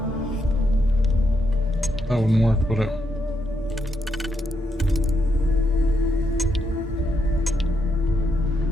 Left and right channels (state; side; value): normal; both; correlation 0.80